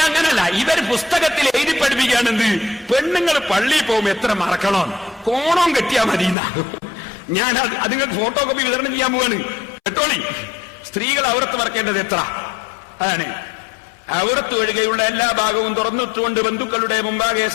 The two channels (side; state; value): right; drops out; at 6.4 s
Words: ഇവർ പുസ്തകത്തിൽ എഴുതി പഠിപ്പിക്കുകയാണെന്ത്? പെണ്ണുങ്ങൾ പള്ളിയിൽ പോകുമ്പോ എത്ര മറക്കണം, കോണം കെട്ടിയാ മതി. ഞാൻ അത് നിങ്ങൾക്ക് ഫോട്ടോ കോപ്പി വിതരണം ചെയ്യാൻ പോവാണ്. കേട്ടോളി. സ്ത്രീകൾ ഔറത്ത് മറക്കേണ്ടത് എത്ര അതാണ്. ഔറത്ത് ഒഴികെയുള്ള എല്ലാ ഭാഗവും തുറന്നിട്ടുകൊണ്ട് ബന്ധുക്കളുടെ മുമ്പാകെ